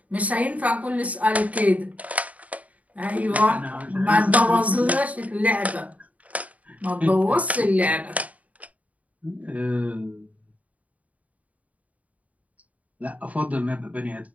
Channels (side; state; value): left; late; 0.070 ms